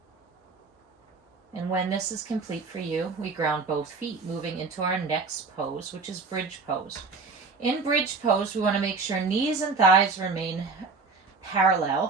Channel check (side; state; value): left; quieter; 4.4 dB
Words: And when this is complete for you, we ground both feet, moving into our next pose, which is bridge pose. In bridge pose, we want to make sure knees and thighs remain